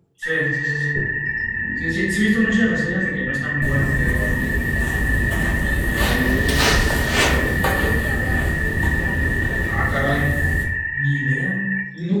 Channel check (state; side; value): identical; both; correlation 1.00